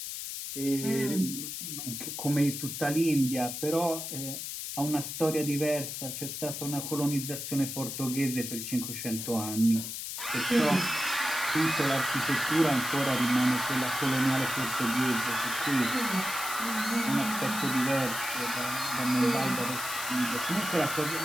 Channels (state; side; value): noise; left; hiss, 6 dB below the sound